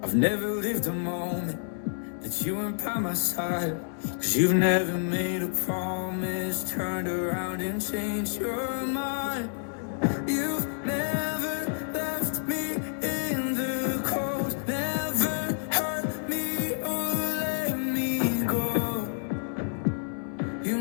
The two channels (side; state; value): right; silent; 59 dB below the other